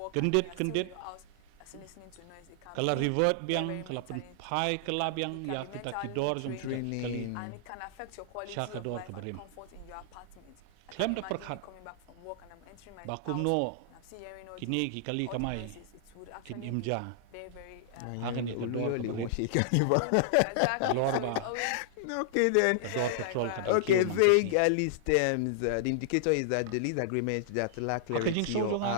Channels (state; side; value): different; both; correlation -0.01